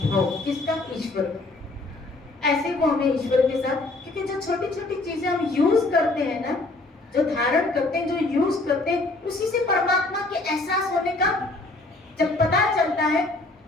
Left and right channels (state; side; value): quieter; right; 3.1 dB